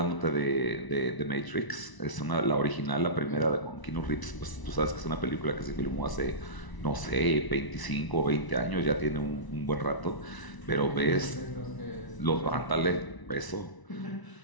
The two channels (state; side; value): late; right; 1.0 ms